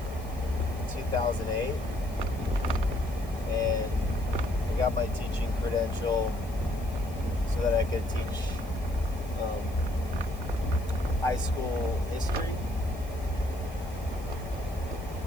2008, and I got my teaching credential so that I could teach high school history.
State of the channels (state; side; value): noise; left; hiss, 21 dB below the sound